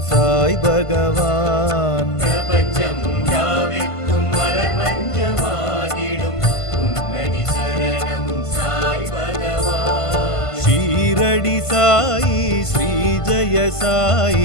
சாய் பகவான். பிரபஞ்சம் யாவிற்கும் மலர் மஞ்சமாகிடும் உன்னடி சரணம் சாய் பகவான். ஷீரடி சாயி ஸ்ரீ ஜெய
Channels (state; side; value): late; right; 1.5 ms